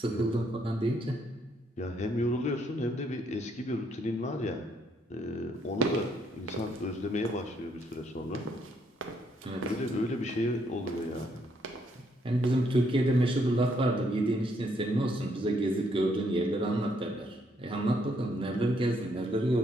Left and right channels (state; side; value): normal; both; correlation 0.71